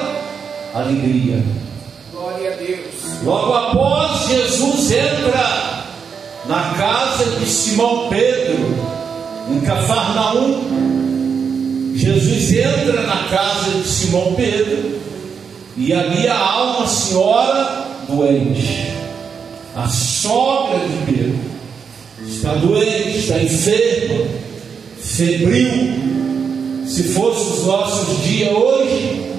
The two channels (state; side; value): quieter; left; 6.4 dB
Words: alegria. Glória a Deus. Logo após, Jesus entra na casa de Simão Pedro, em Cafarnaum. Jesus entra na casa de Simão Pedro, e ali há uma senhora doente, a sogra de Pedro. Está doente, está enferma, febril. Se fosse os nossos dias hoje,